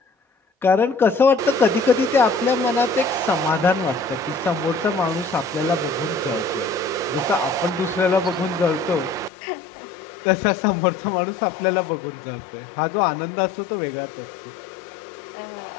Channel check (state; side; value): drops out; right; at 9.3 s